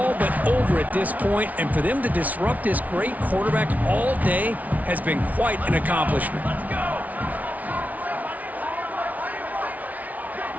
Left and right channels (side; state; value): left; late; 0.073 ms